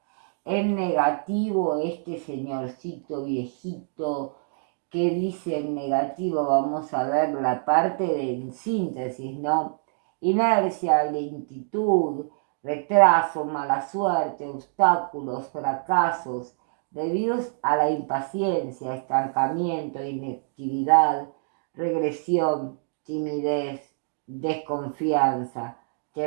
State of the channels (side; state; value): left; silent; digital silence